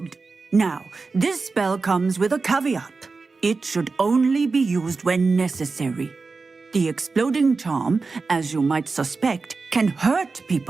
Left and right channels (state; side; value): quieter; left; 4.2 dB